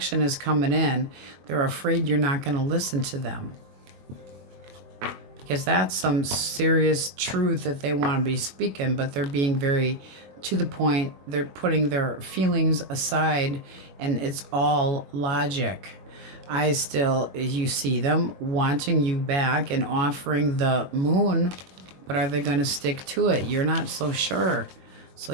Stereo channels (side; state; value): left; late; 21 ms